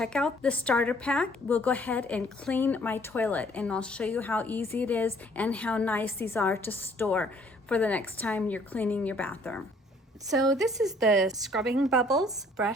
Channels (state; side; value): normal; both; correlation 0.60